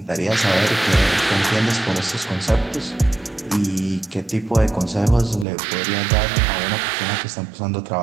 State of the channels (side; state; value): left; drops out; at 5.5 s